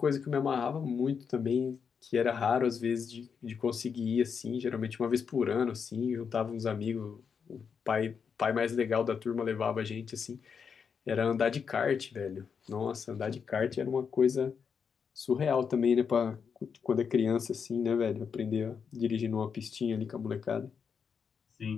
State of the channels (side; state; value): right; quieter; 6.4 dB